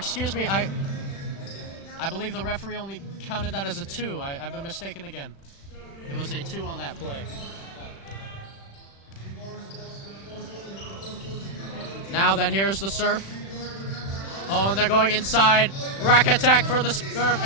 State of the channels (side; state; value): right; late; 36 ms